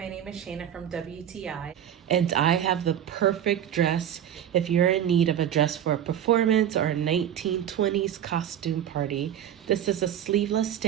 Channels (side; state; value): left; quieter; 10.2 dB